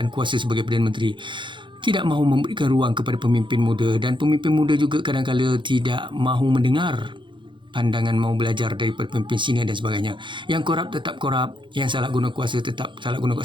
kuasa sebagai Perdana Menteri. Tidak mahu memberikan ruang kepada pemimpin muda, dan pemimpin muda juga kadang-kadang tidak mahu mendengar pandangan, mau belajar daripada pemimpin senior dan sebagainya. Yang korup tetap korup, yang salah guna kuasa tetap salah guna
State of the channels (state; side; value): late; left; 0.23 ms